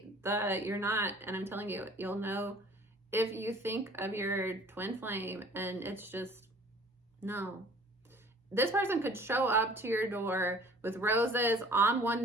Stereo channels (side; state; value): both; normal; correlation 0.50